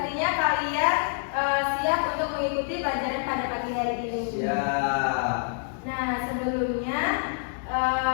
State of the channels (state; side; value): silent; right; digital silence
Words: kalian siap untuk mengikuti pelajaran pada pagi hari ini. Siap. Nah, sebelumnya